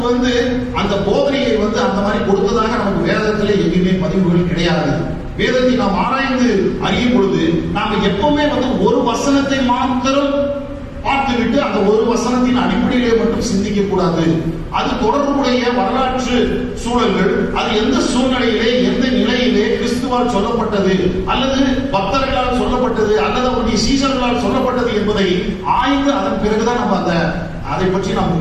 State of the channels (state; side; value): identical; both; correlation 1.00